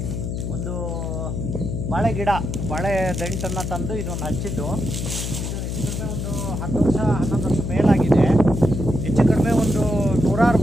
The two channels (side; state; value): left; noise; hum, 3 dB below the sound